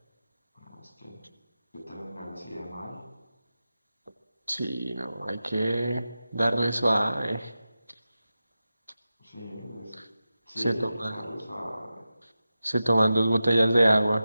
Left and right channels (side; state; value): both; inverted; correlation -0.93